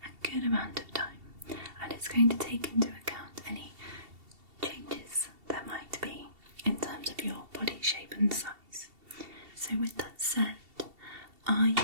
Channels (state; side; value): late; left; 2.7 ms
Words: a good amount of time, and it's going to take into account any changes there might be in terms of your body shape and size. So with that said, are